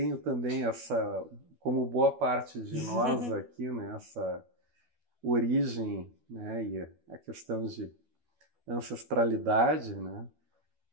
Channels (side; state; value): left; late; 12 ms